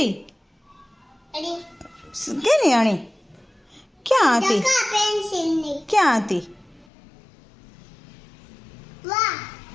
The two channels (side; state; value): right; drops out; at 6.9 s